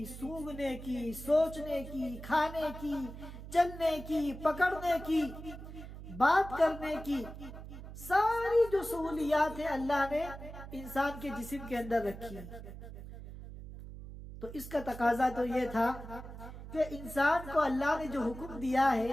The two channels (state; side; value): noise; right; hum, 12 dB below the sound